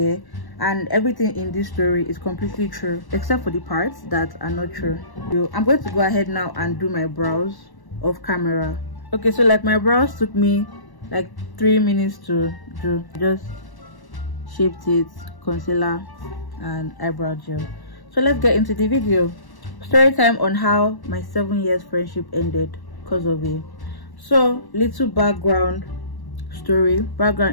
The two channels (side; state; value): right; late; 1.1 ms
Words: and everything in this story is completely true except for the parts that are not true. So I'm going to go ahead now and do my brows off camera. Okay, so like my brows took me like 3 minutes to do. Just shaped it, concealer and eyebrow gel. So let's get into the video. Story time on how my 7 years friendship ended because of it. So little background